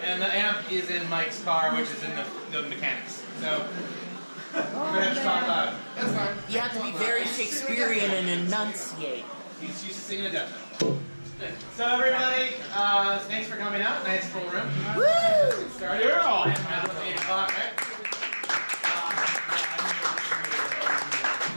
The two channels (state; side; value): inverted; both; correlation -1.00